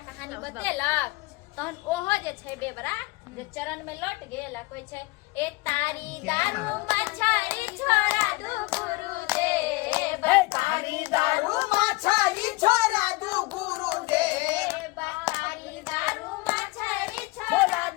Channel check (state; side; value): quieter; right; 23.3 dB